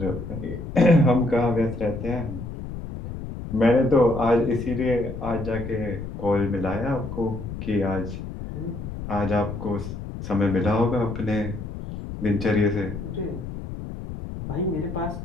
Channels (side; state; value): left; noise; rumble, 8 dB below the sound